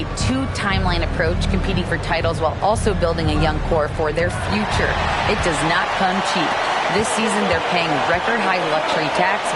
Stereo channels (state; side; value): identical; both; correlation 1.00